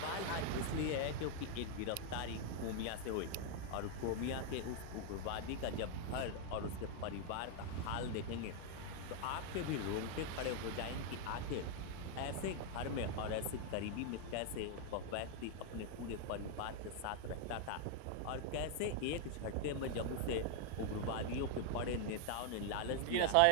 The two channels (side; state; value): both; different; correlation 0.00